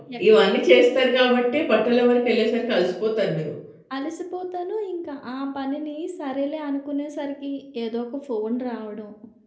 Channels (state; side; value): identical; both; correlation 1.00